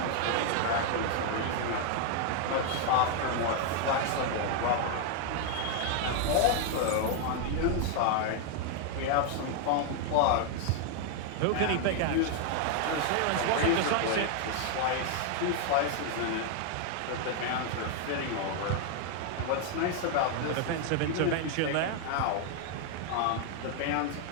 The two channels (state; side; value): different; both; correlation 0.00